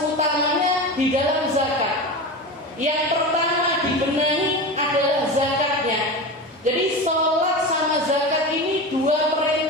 utamanya di dalam zakat. Yang pertama dibenahi adalah zakatnya. Jadi sholat sama zakat ini dua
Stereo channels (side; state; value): both; normal; correlation 0.26